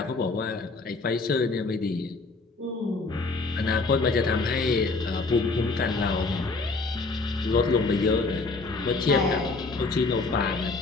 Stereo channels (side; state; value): right; quieter; 3.7 dB